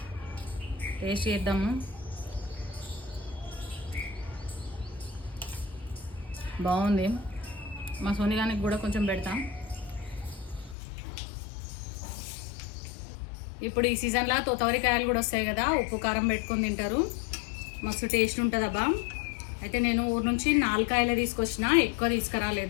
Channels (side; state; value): right; drops out; at 10.8 s